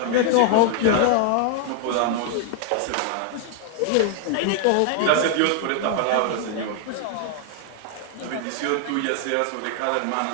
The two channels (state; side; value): different; both; correlation -0.01